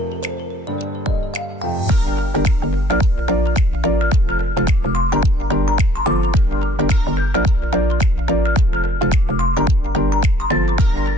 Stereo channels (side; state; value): left; late; 1.3 ms